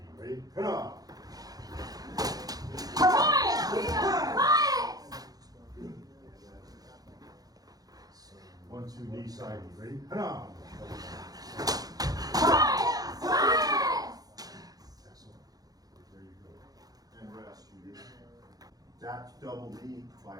Ready? Come on. 1, 2, knee, side knee. Ready? Come on. Excellent. There you go. And rest. That double knee by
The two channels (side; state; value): left; late; 0.18 ms